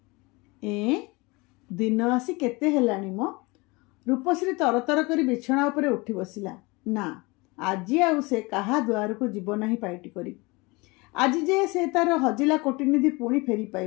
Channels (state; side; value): quieter; right; 25.1 dB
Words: ଦିନ ଆସି କେତେ ହେଲାଣି ମ? ରୂପଶ୍ରୀ ତରତର କରି ବିଛଣା ଉପରେ ଉଠି ବସିଲା। ନା, ଆଜି ଆଉ ସେ କାହା ଦୁଆରକୁ ଯିବ ନାହିଁ ପାଇଟି କରି। ଆଜି ଯେ ସେ ତାର ହଜିଲା କୋଟିନିଧି ପୁଣି ଫେରି